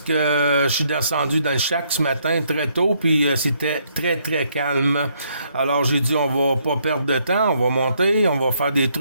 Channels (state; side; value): inverted; both; correlation -0.71